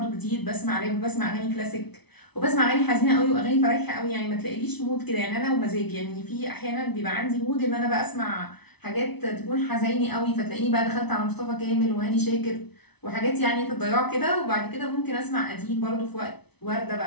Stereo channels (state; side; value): late; right; 0.99 ms